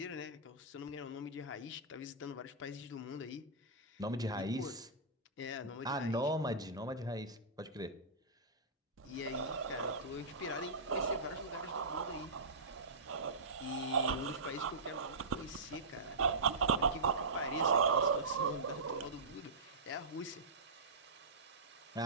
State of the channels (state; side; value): quieter; left; 3.2 dB